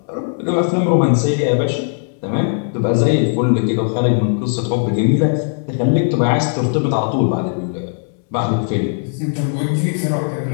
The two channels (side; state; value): right; silent; digital silence